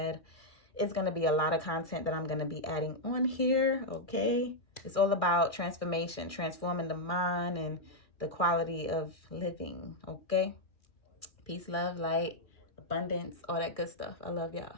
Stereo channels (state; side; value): late; right; 2.4 ms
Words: It's going to be a lot of content that I'm going to be adding on here, okay? It's all about transformation, transforming the mind and the quality of living, okay? Peace, love, light, abundance, all that good stuff. I love y'all.